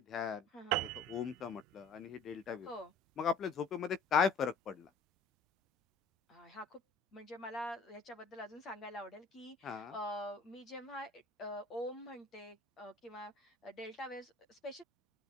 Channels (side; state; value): right; quieter; 3.2 dB